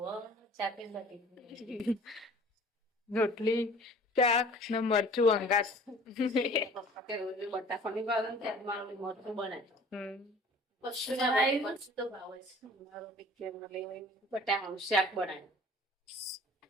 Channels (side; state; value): both; normal; correlation 0.48